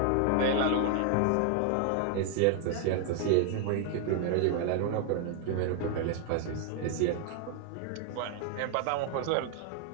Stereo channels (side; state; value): both; different; correlation 0.00